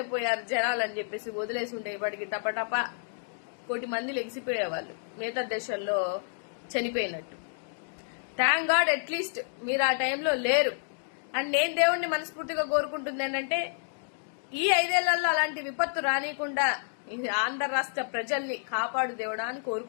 పోయారు జనాలు అని చెప్పేసి వదిలేసి ఉంటే ఇప్పటికి టపటప 1 కోటి మంది లెగిసిపోయేవాళ్ళు మిగతా దేశాల్లో చనిపోయినట్టు. థ్యాంక్ గాడ్ అట్లీస్ట్ మీరు ఆ టైంలో లేరు. అండ్ నేను దేవుణ్ణి మనస్ఫూర్తిగా కోరుకుంటుంది ఏంటంటే ఈ 5 ఏళ్లలో అలాంటి విపత్తు రానియకుండా ఆంధ్ర రాష్ట్ర ప్రజల్ని కాపాడు దేవుడా అని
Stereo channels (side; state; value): right; silent; digital silence